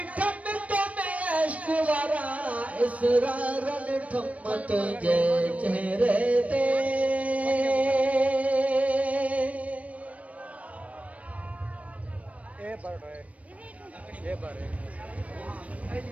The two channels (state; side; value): late; left; 0.066 ms